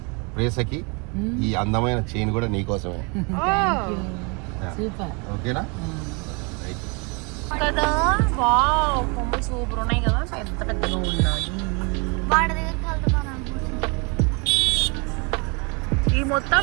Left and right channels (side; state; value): left; quieter; 31.9 dB